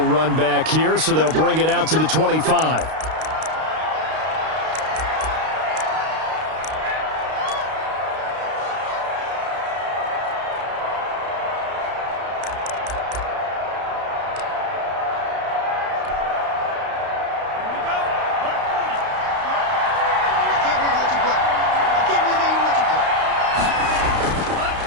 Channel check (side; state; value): left; late; 32 ms